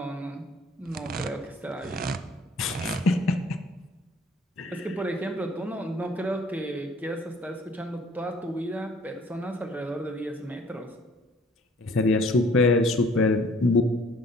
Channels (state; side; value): normal; both; correlation 0.56